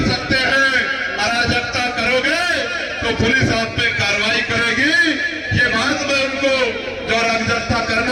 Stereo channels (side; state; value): both; identical; correlation 1.00